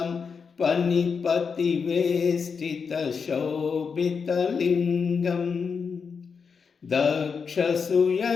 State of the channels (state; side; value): quieter; right; 5.7 dB